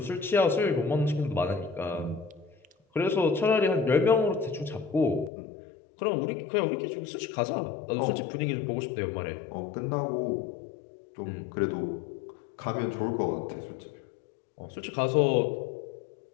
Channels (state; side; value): drops out; right; at 5.3 s